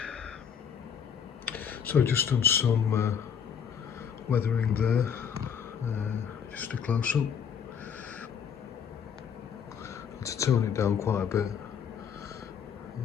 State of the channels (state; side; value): quieter; right; 7.5 dB